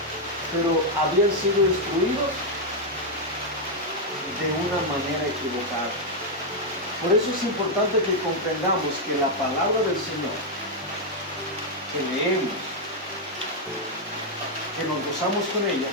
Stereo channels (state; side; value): normal; both; correlation -0.01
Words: pero habían sido instruidos de una manera equivocada. Por eso es importante que comprendamos que la palabra del Señor que leemos, que nos gozamos con ella,